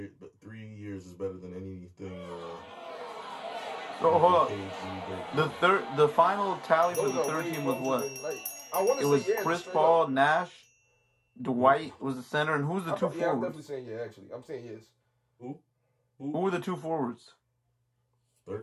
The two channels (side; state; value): both; identical; correlation 1.00